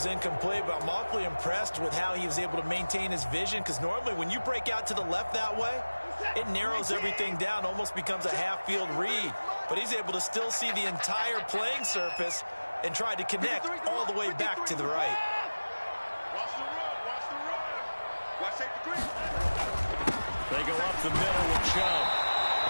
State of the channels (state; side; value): inverted; both; correlation -1.00